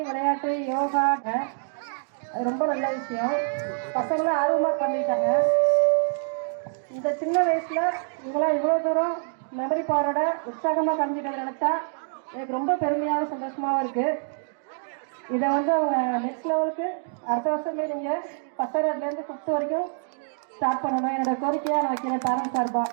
விளையாட்டு யோகா அது ரொம்ப நல்ல விஷயம். பசங்களாம் ஆர்வமாக பண்ணிட்டாங்க. இந்த சின்ன வயசில் இவங்களாம் இவ்வளோ தூரம் மெமரி பவரோட உற்சாகமாக கலந்துட்டு நினச்சா எனக்கு ரொம்ப பெருமையாக சந்தோஷமாகவும் இருக்குது. இதை அவங்க நெக்ஸ்ட் லெவலுக்கு அடுத்த வருஷமே நீங்கள் 10லேருந்து 5th வரைக்கும் ஸ்டார்ட் பண்ணணும். என்னோடய கோரிக்கையாக நான் வைக்கிறேன் பேரண்ட்ஸ் சார்பாக.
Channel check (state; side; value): silent; left; digital silence